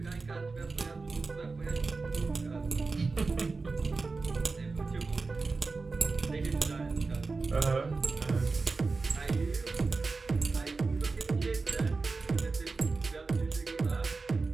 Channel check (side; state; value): left; quieter; 4.0 dB